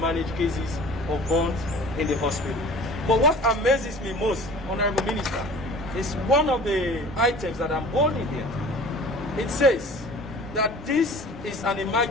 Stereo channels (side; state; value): both; normal; correlation 0.44